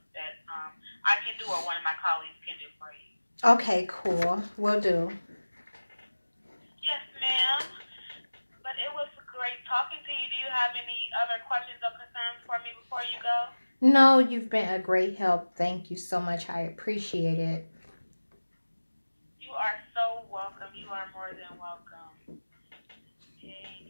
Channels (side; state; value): both; inverted; correlation -1.00